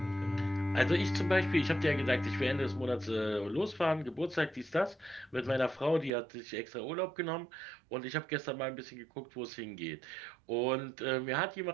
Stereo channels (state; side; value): drops out; left; at 6.1 s